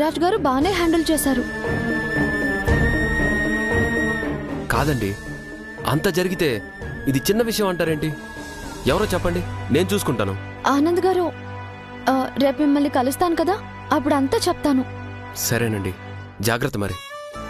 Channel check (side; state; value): both; identical; correlation 1.00